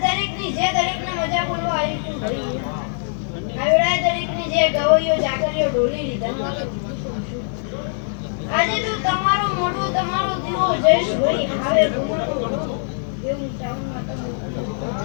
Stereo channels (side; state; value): right; silent; 60 dB below the other